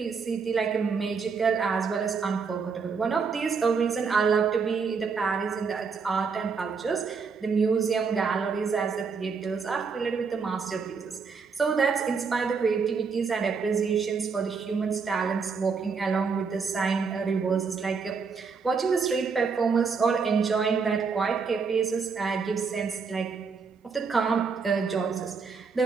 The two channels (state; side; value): quieter; left; 5.3 dB